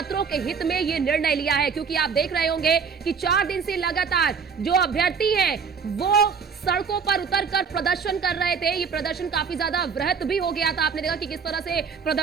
के हित में ये निर्णय लिया है, क्योंकि आप देख रहे होंगे कि 4 दिन से लगातार जो अभ्यर्थी हैं वो सड़कों पर उतरकर प्रदर्शन कर रहे थे। ये प्रदर्शन काफी ज्यादा वृहत भी हो गया था। आपने देखा कि किस तरह से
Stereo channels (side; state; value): left; quieter; 6.0 dB